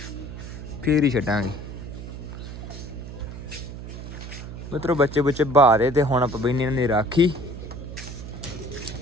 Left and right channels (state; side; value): noise; right; hum, 10 dB below the sound